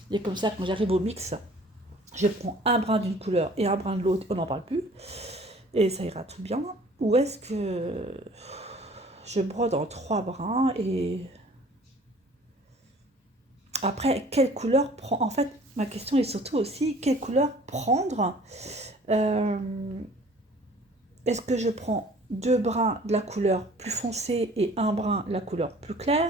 Et comme ça, quand j'arrive au mix, je prends un brin d'une couleur et un brin de l'autre, on n'en parle plus. Et ça ira tout bien. Ou est-ce que je brode en 3 brins et après, quelle couleur prendre? En fait, ma question est surtout aussi, quelle couleur prendre? Est-ce que je prends 2 brins de la couleur plus foncée et un brin de la couleur plus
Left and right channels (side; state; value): both; normal; correlation 0.51